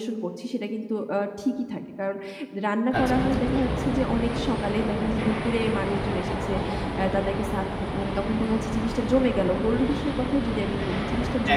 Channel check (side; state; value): both; identical; correlation 1.00